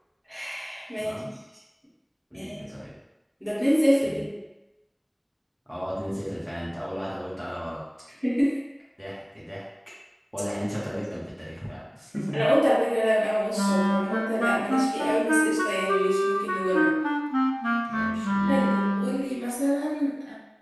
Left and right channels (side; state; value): both; identical; correlation 1.00